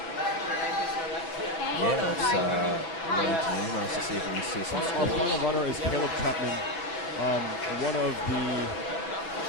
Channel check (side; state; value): right; late; 6.0 ms